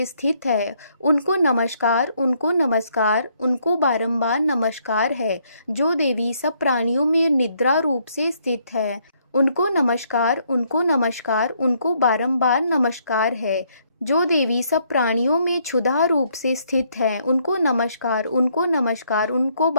स्थित है, उनको नमस्कार, उनको नमस्कार, उनको बारंबार नमस्कार है। जो देवी सब प्राणियों में निद्रा रूप से स्थित है, उनको नमस्कार, उनको नमस्कार, उनको बारंबार नमस्कार है। जो देवी सब प्राणियों में क्षुधा रूप से स्थित है, उनको नमस्कार, उनको नमस्कार, उनको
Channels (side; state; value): both; inverted; correlation -0.70